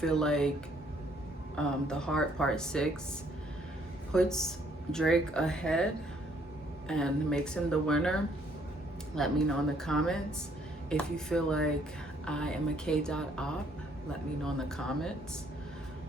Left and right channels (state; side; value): normal; both; correlation 0.66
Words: like The Heart Part 6 puts Drake ahead and makes him the winner, let me know in the comments. If you feel like I am a K.op, let me know in the comments.